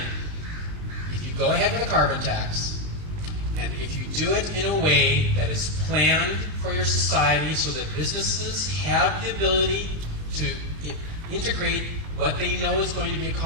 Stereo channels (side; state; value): left; late; 19 ms